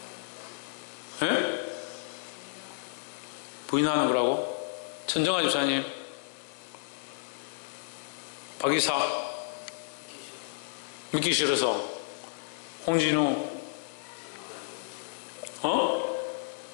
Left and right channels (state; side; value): silent; right; digital silence